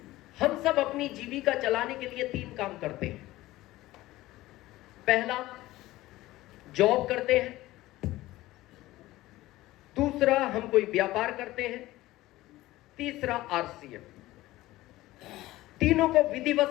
हम सब अपनी जीविका चलाने के लिए 3 काम करते हैं। पहला, जॉब करते हैं। दूसरा, हम कोई व्यापार करते हैं। तीसरा, आरसीएम। तीनों को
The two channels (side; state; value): right; quieter; 17.3 dB